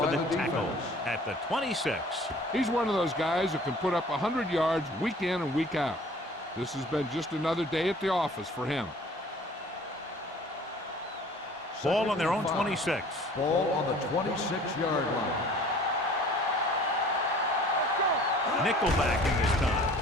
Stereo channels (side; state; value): both; normal; correlation 0.50